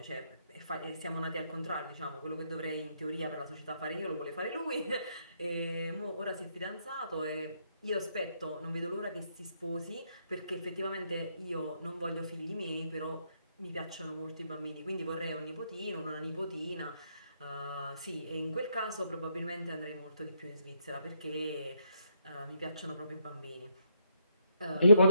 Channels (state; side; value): inverted; both; correlation -0.75